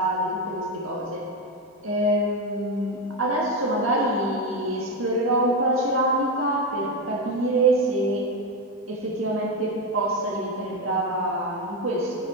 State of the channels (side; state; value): both; normal; correlation 0.12